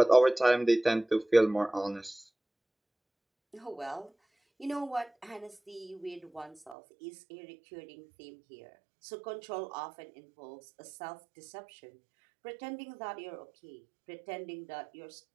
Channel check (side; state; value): left; drops out; at 6.8 s